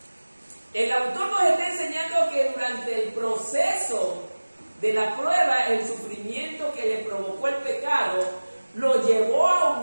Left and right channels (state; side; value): inverted; both; correlation -1.00